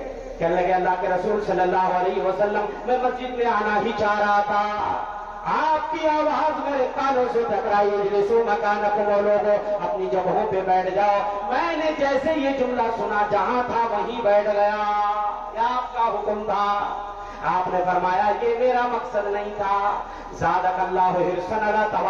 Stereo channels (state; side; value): identical; both; correlation 1.00